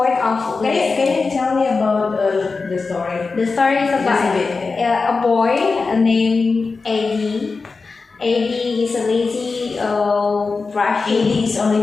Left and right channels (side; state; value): right; quieter; 4.3 dB